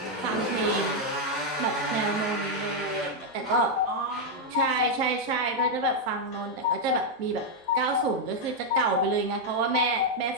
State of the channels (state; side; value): normal; both; correlation -0.01